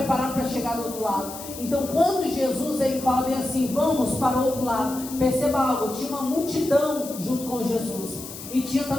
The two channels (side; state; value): left; noise; hiss, 12 dB below the sound